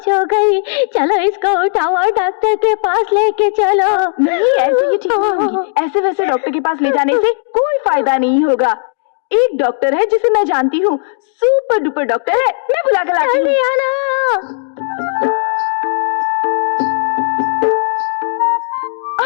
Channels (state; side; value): silent; right; digital silence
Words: हो गई। चलो इसको उठाओ और डॉक्टर के पास लेके चलो। नहीं, ऐसे ही ठीक नहीं होगी। ऐसे वैसे डॉक्टर के पास ले जाने से कोई फायदा नहीं होगा। एक डॉक्टर है जिसे मैं जानती हूँ, सुपर डुपर डॉक्टर है, मैं बुला कर लाती हूँ।